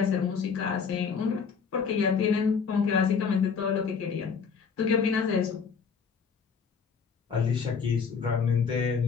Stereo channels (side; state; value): right; quieter; 6.0 dB